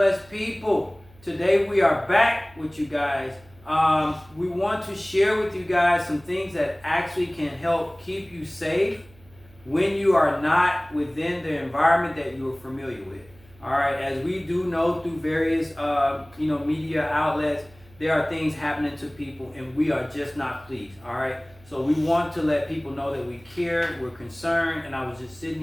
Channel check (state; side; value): noise; right; hum, 26 dB below the sound